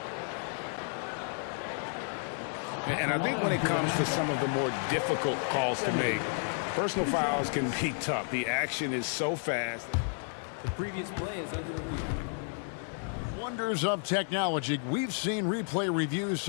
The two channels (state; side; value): silent; right; 57 dB below the other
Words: And I think when it comes to some of the more difficult calls to make, personal fouls can be tough. The action is so fast. The previous play is under review. Wonders of technology. We've seen replay reviews